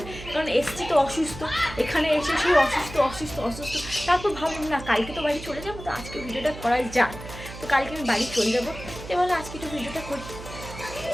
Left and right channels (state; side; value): noise; right; hum, 13 dB below the sound